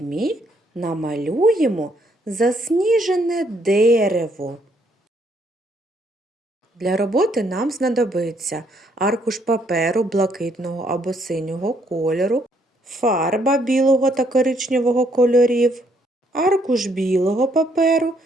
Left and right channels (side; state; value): both; normal; correlation 0.70